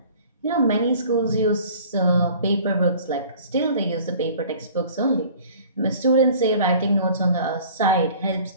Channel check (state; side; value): inverted; both; correlation -0.49